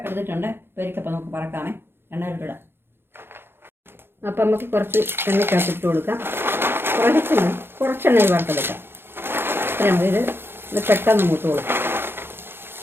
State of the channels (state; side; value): late; left; 0.11 ms